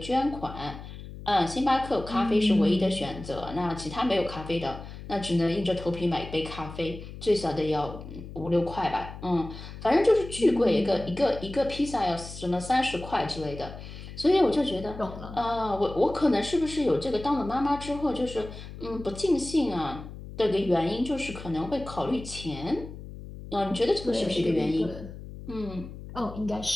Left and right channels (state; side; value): noise; left; hum, 12 dB below the sound